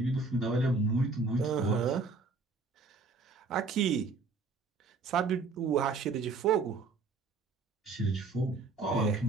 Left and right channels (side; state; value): left; quieter; 4.1 dB